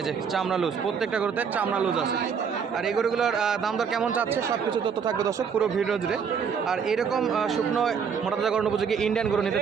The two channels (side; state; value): left; quieter; 6.6 dB